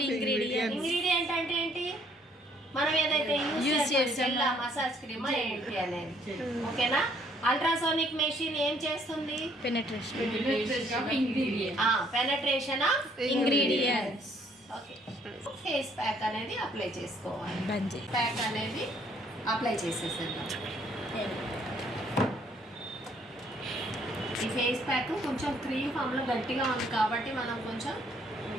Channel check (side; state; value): both; normal; correlation 0.64